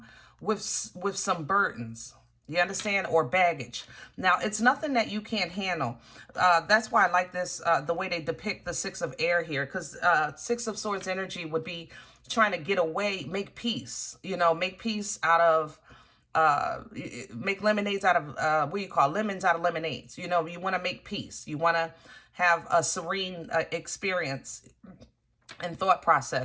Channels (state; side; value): identical; both; correlation 1.00